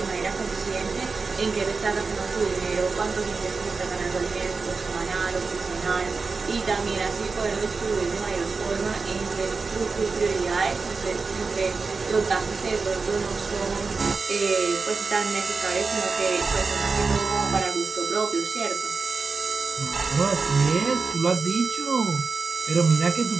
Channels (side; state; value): left; quieter; 4.4 dB